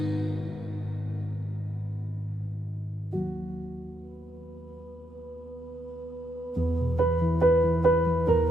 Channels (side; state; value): both; normal; correlation 0.80